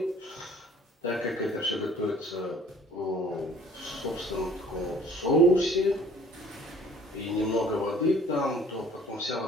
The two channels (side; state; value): both; normal; correlation 0.53